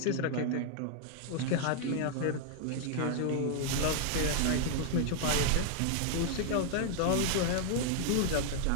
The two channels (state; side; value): different; both; correlation 0.00